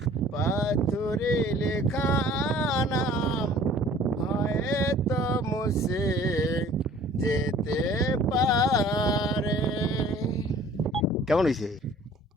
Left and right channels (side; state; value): both; normal; correlation 0.51